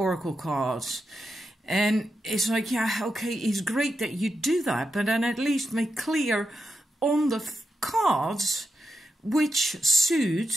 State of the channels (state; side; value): normal; both; correlation 0.87